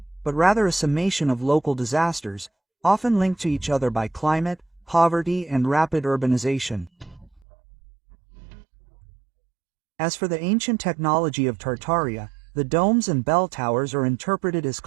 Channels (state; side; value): drops out; left; at 7.4 s